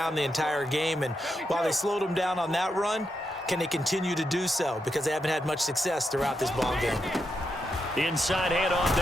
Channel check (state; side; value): normal; both; correlation 0.84